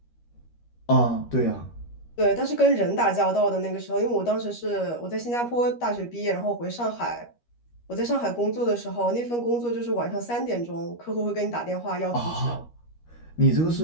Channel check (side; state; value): right; late; 13 ms